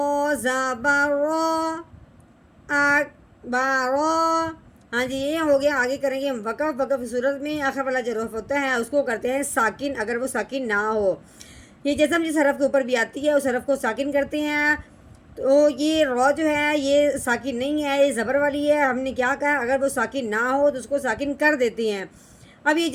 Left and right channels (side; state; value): both; identical; correlation 1.00